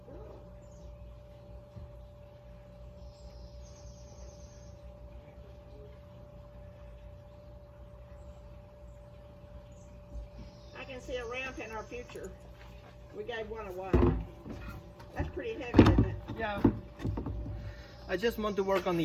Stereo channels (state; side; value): identical; both; correlation 1.00